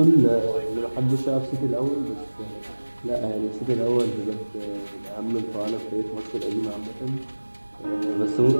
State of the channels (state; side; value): inverted; both; correlation -1.00